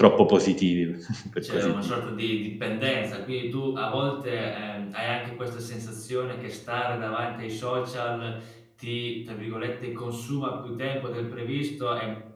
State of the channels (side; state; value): both; identical; correlation 1.00